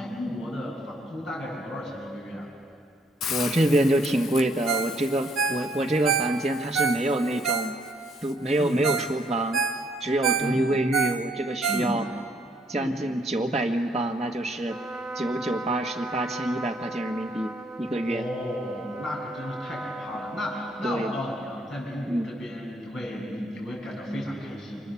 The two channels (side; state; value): both; normal; correlation 0.68